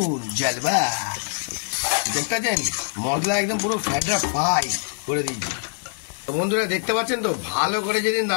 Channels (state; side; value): silent; right; 63 dB below the other